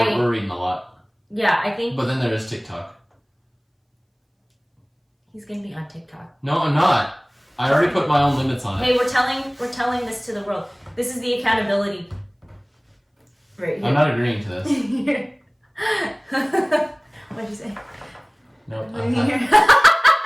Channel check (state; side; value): identical; both; correlation 1.00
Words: reading a lot. Yeah, I think. But then there is TikTok. He's gonna be on TikTok. No, I'm not. I already put my own limits on it. Hey, we're telling this to the world. This is the accountability. Right here. I'm not agreeing to this. What'd you say? Nope.